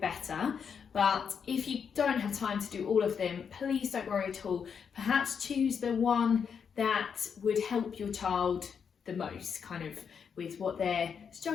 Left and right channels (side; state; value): right; quieter; 6.8 dB